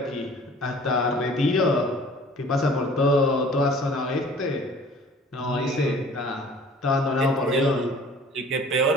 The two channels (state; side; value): normal; both; correlation 0.49